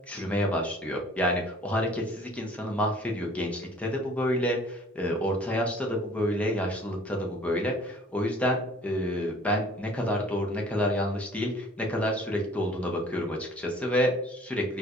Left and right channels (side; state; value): both; normal; correlation 0.52